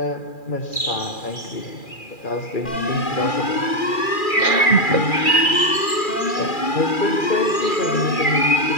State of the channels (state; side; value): late; right; 2.4 ms